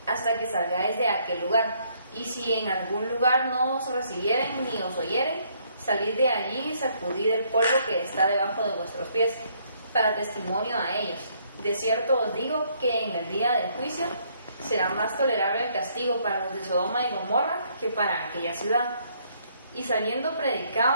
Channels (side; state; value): both; inverted; correlation -0.68